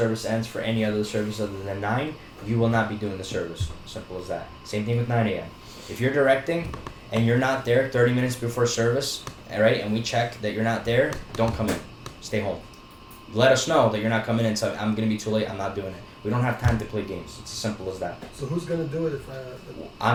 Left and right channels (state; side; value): identical; both; correlation 1.00